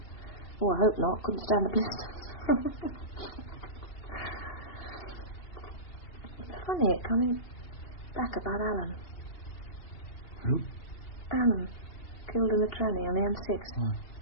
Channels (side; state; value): right; late; 2.8 ms